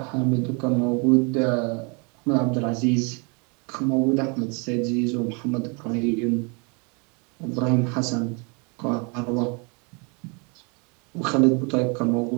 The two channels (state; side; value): quieter; left; 33.2 dB